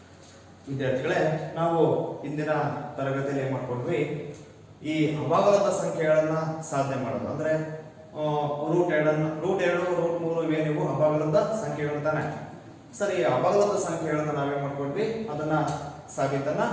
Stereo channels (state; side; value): identical; both; correlation 1.00